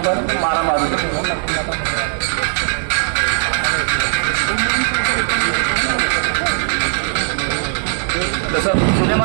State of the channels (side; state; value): left; silent; 63 dB below the other